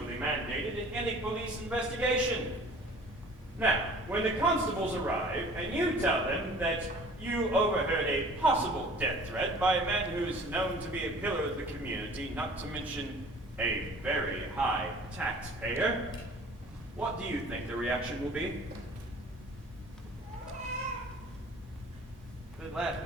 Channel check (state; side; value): normal; both; correlation 0.48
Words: mandated in any police investigation. Now, when the constables arrive and you tell them that you overheard a possible death threat by a man who is known to be a pillar of the community, not to mention a very high taxpayer, what do you think the reaction will be? They'd laugh